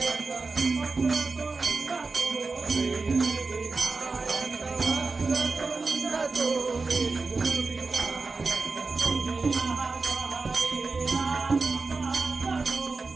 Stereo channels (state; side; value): quieter; left; 4.0 dB